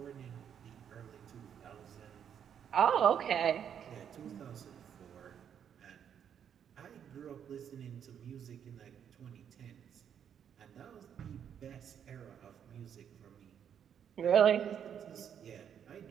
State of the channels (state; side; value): quieter; left; 8.5 dB